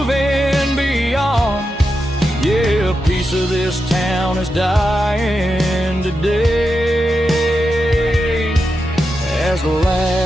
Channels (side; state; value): both; normal; correlation 0.88